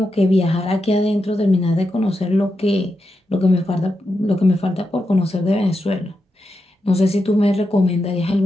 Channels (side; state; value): both; normal; correlation 0.87